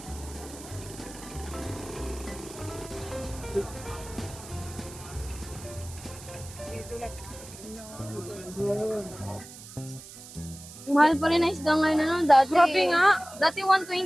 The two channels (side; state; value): right; noise; hiss, 16 dB below the sound